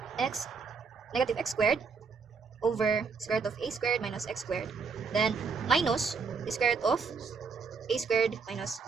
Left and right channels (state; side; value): quieter; left; 5.3 dB